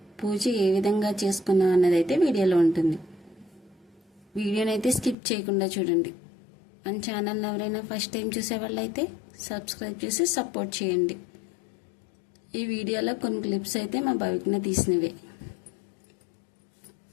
పూజ ఏ విధంగా చేసుకున్నాం అన్నది అయితే వీడియోలో ఉంటుంది. వీడియోనైతే స్కిప్ చేయకుండా చూడండి. మన ఛానల్ ఎవరైనా ఫస్ట్ టైం చూసేవాళ్ళైతే సబ్స్క్రైబ్ చేసి సపోర్ట్ చేయండి. ఈ వీడియోలో కొన్ని క్లిప్స్ అయితే మా భవిజ్ఞ తీసినవే.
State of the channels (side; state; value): right; drops out; at 5.2 s